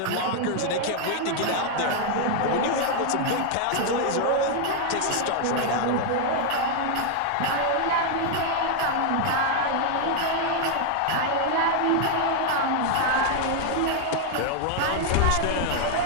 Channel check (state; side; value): different; both; correlation 0.00